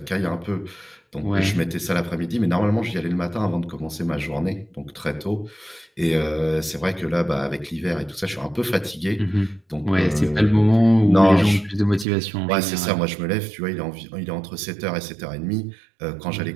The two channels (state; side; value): drops out; left; at 12.1 s